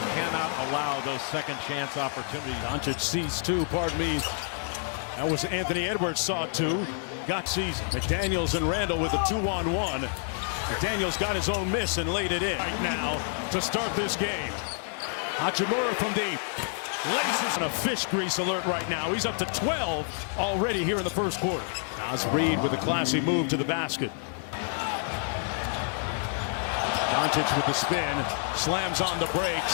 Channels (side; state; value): right; silent; 59 dB below the other